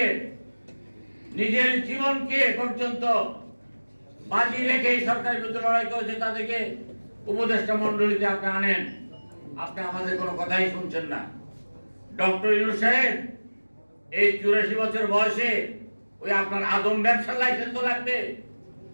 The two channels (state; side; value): inverted; both; correlation -1.00